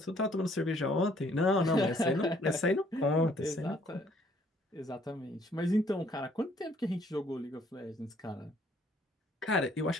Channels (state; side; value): normal; both; correlation 0.63